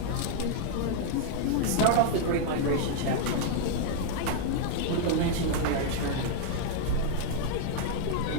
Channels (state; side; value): different; both; correlation -0.01